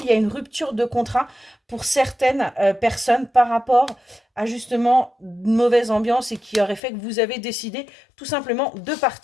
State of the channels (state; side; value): drops out; right; at 6.8 s